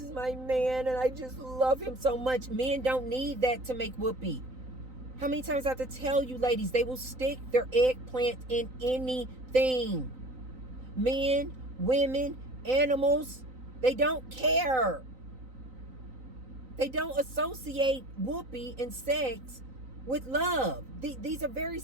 my man, and I just love him so much. Men don't need that to make whoopee. How many times I have to tell you, ladies, they will stick their eggplant in anything. Men, women, animals, they don't care. They don't associate whoopee and sex with love. These are very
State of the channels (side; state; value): left; late; 3.9 ms